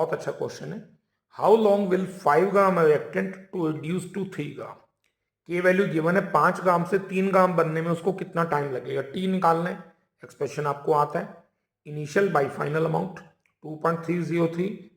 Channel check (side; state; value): both; identical; correlation 1.00